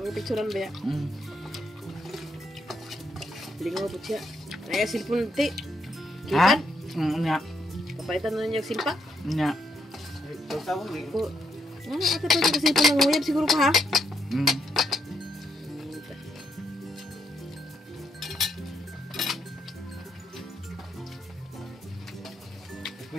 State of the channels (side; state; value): both; normal; correlation 0.77